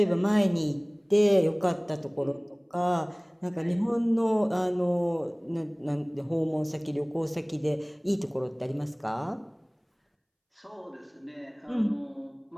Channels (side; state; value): both; identical; correlation 1.00